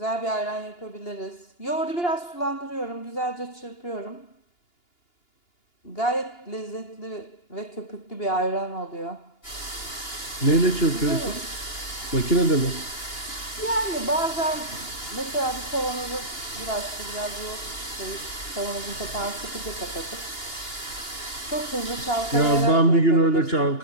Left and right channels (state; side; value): late; right; 2.9 ms